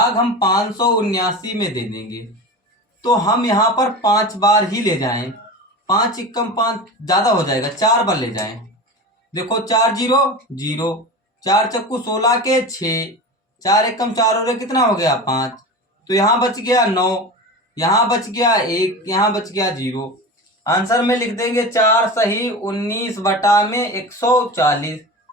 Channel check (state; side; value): normal; both; correlation 0.29